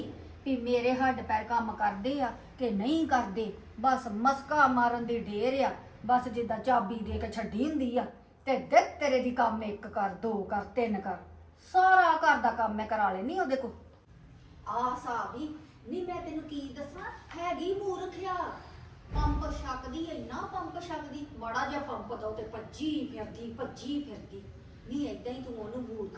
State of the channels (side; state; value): both; identical; correlation 1.00